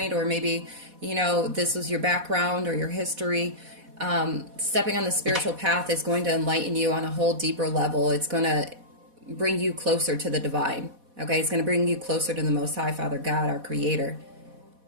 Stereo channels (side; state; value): left; late; 4.1 ms